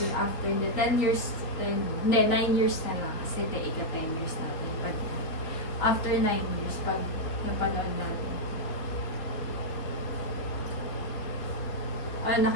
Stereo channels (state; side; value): late; right; 3.8 ms